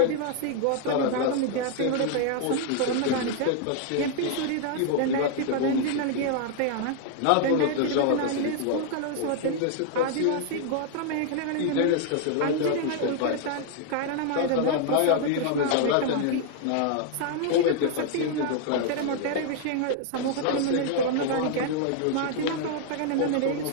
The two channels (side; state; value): both; different; correlation 0.00